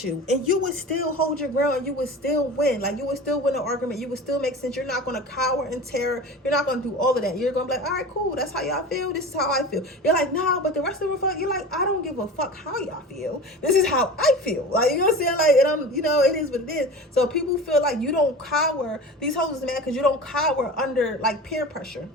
you and you would still hold your ground and you would still win. Like, you would still win the argument. You would still make sense. You're not going to cower in terror. You're not going to do all of that. You're going to be like, all right, cool. That's how y'all feel. This is how I feel. You're like, nah, but the rest of them, you're like, I don't give a fuck how y'all feel. This is how I feel. Like, you know what I'm saying? Like, and I'm, it is what it is. So people feel like you don't cower. These hoes is mad because you don't cower under like peer pressure.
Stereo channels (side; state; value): both; normal; correlation 0.34